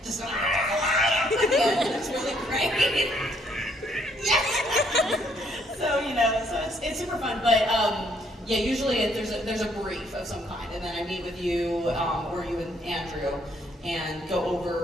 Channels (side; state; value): both; normal; correlation 0.69